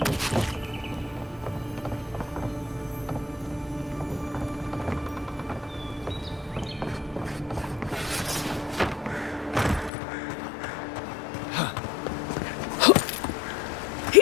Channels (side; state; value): right; drops out; at 9.9 s